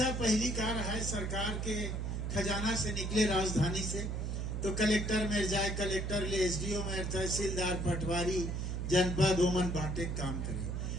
पहली कार है सरकार के खजाना से निकले राजधानी से तो कलेक्टर में जाए, कलेक्टर ले एसडीओ में तहसीलदार पटवारी जनपद ओमन बांटे काम करे,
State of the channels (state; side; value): noise; right; hum, 2 dB below the sound